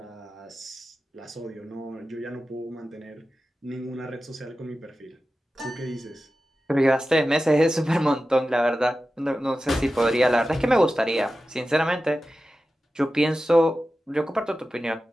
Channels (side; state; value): both; normal; correlation 0.94